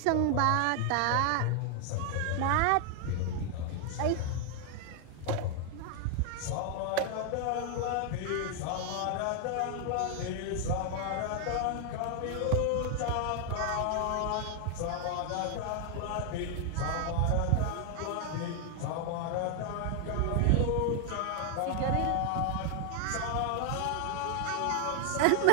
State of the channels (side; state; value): both; different; correlation 0.00